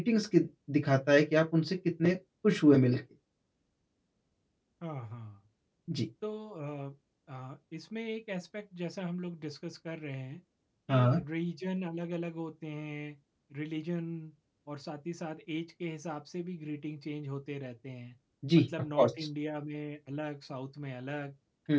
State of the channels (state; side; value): identical; both; correlation 1.00